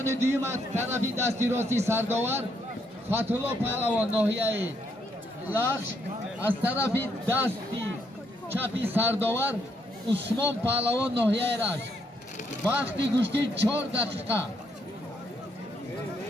دوم از طرف دستی راستی سرداور فتح‌الله پهلوان ناحیه لخش، از طرف دستی چپی سرداور عثمان پهلوان ناحیه رشت. وقتی گوشتی 4 دقیقه.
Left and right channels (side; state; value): both; normal; correlation 0.74